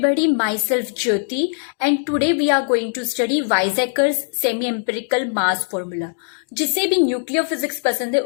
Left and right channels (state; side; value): silent; right; digital silence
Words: myself Jyoti and today we are going to study Weizsäcker's semi-empirical mass formula. जिसे भी nuclear physics पसंद है